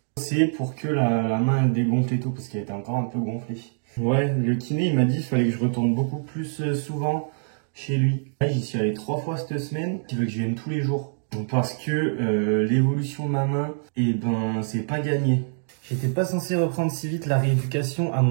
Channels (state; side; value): silent; left; digital silence